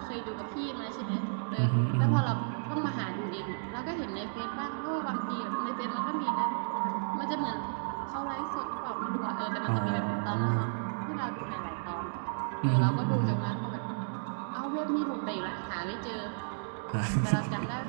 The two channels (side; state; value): left; silent; digital silence